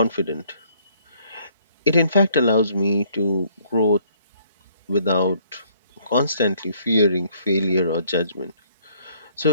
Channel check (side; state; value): both; inverted; correlation -0.63